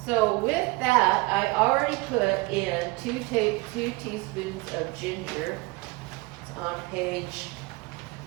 So with that, I already put in 2 teaspoons of ginger. It's on page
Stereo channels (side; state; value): left; quieter; 24.3 dB